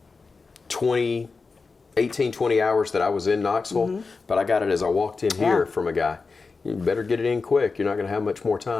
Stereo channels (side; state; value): right; quieter; 4.4 dB